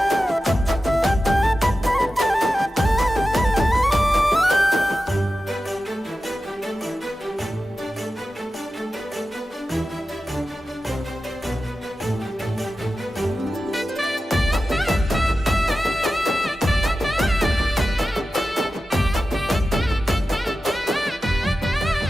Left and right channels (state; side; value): normal; both; correlation 0.93